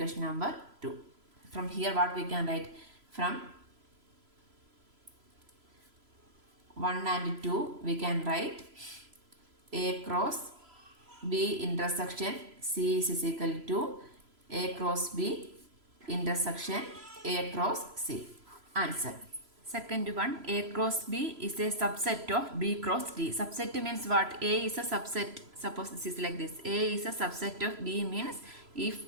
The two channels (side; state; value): left; late; 3.0 ms